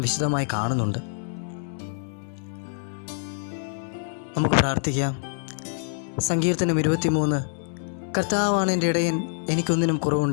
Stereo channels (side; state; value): right; silent; 61 dB below the other